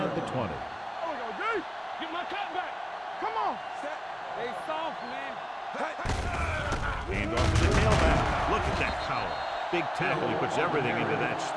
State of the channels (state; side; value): identical; both; correlation 1.00